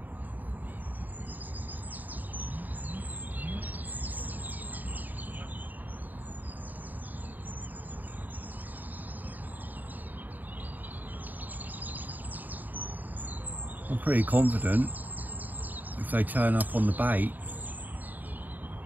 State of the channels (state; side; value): late; left; 0.085 ms